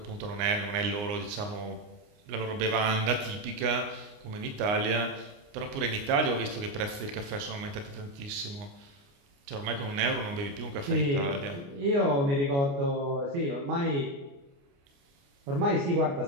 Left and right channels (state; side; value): late; left; 29 ms